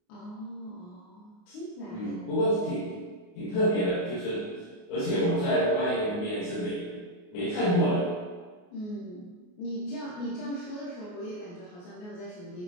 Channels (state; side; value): late; right; 28 ms